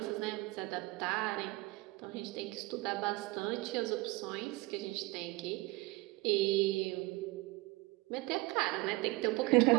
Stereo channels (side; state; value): left; quieter; 22.0 dB